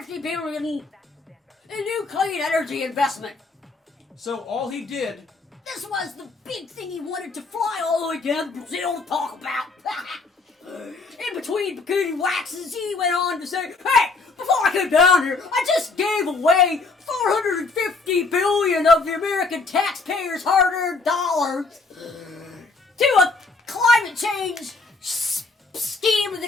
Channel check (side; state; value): right; quieter; 3.9 dB